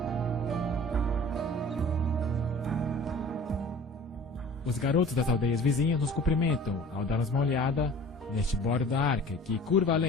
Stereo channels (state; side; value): normal; both; correlation 0.44